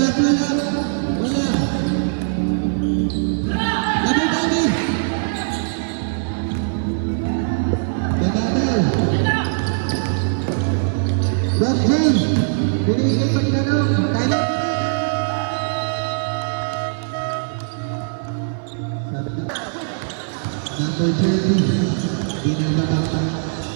po lang. Wala. Labay-tabi. Bob James, binigay pagtanong, kaya number 30, binabata.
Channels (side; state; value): left; silent; 58 dB below the other